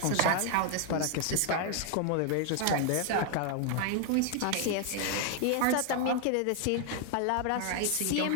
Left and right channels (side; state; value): both; different; correlation 0.00